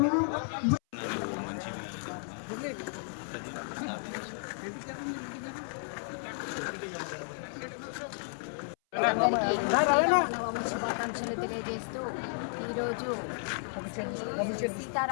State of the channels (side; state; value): right; silent; 56 dB below the other